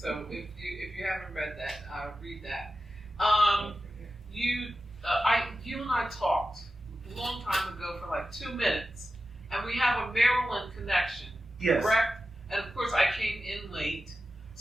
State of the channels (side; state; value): both; normal; correlation 0.92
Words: if you haven't read that, read that. You and I talked a long time ago for like 2 minutes, and we have a Maryland connection, Yes. correct? And of course, I came in late,